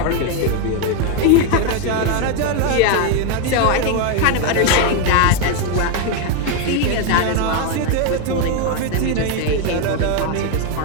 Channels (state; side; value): different; both; correlation 0.01